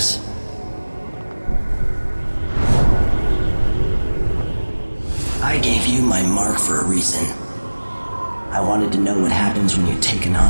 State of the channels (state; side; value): inverted; both; correlation -1.00